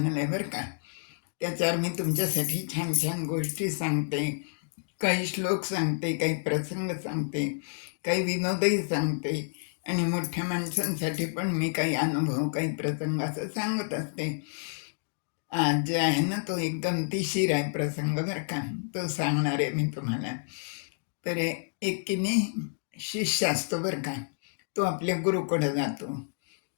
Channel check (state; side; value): silent; right; digital silence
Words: आहे बरं का. त्याच्यावर मी तुमच्यासाठी छान छान गोष्टी सांगते, काही श्लोक सांगते, काही प्रसंग सांगते, काही विनोदही सांगते आणि मोठ्या माणसांसाठी पण मी काही अनुभव, काही प्रसंग असं सांगत असते. आज जे आहे ना तो एक गमतीशीर आहे प्रसंग बरं का, तो सांगणार आहे मी तुम्हाला. तर एक की नाही शिष्य असतो बरं का, तो आपल्या गुरुकडे जातो.